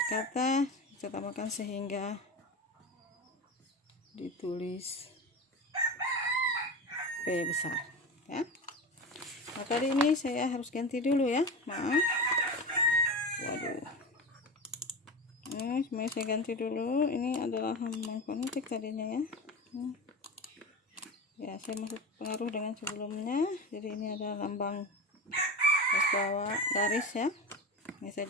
kata kita tambahkan sehingga ditulis P besar ya. Nah, tadi ini saya harus ganti dulu ya, maaf. Waduh. Ini semuanya saya ganti dulu. Ini adalah lambang fonetik tadinya ya. Ya, saya masuk pengaruh dengan sebelumnya. Jadi ini adalah lambang garis bawah garis ya. Ini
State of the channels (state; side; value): normal; both; correlation 0.26